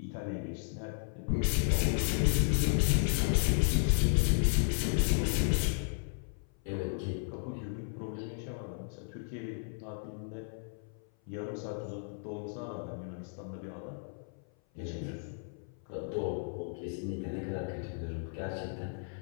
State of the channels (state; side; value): silent; right; 55 dB below the other